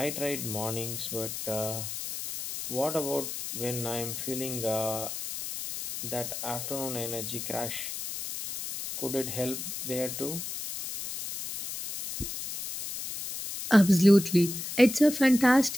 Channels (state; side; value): noise; left; hiss, 6 dB below the sound